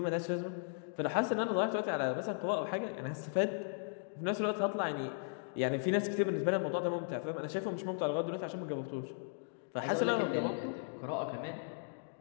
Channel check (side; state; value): right; silent; digital silence